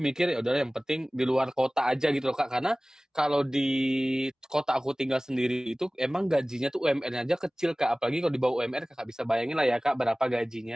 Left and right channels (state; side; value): normal; both; correlation 0.98